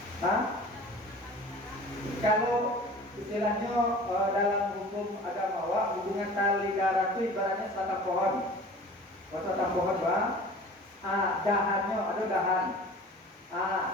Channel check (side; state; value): both; normal; correlation 0.42